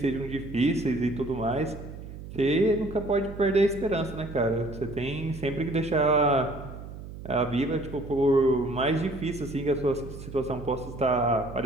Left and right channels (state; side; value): noise; right; hum, 12 dB below the sound